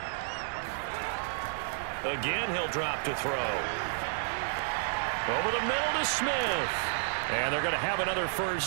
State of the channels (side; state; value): left; silent; 56 dB below the other